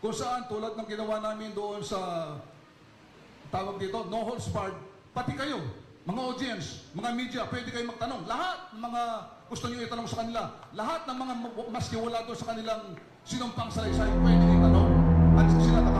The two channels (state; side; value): identical; both; correlation 1.00